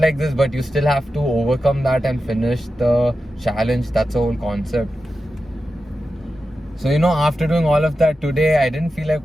this, but you still have to overcome that and finish the challenge. That's the whole concept. So after doing all of that today, I didn't feel like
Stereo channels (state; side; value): normal; both; correlation 0.91